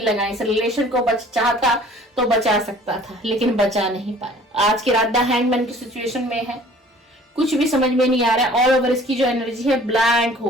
लगाए। इस रिलेशन को चाहता तो बचा सकता था, लेकिन बचा नहीं पाया। आज की रात द हैंगमैन की सिचुएशन में है, कुछ भी समझ में नहीं आ रहा है। ऑल ओवर इसकी जो एनर्जी है ब्लैंक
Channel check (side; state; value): both; normal; correlation 0.51